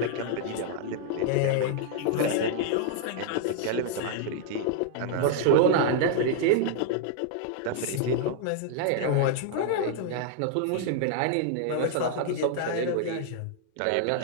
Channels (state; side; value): different; both; correlation 0.00